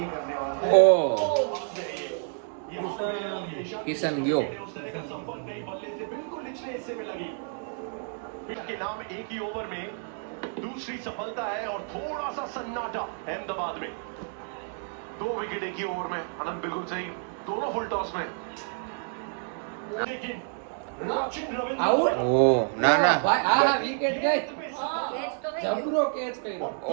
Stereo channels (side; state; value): left; silent; 59 dB below the other